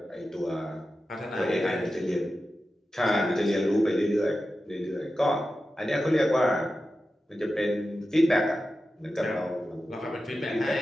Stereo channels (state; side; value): normal; both; correlation 0.92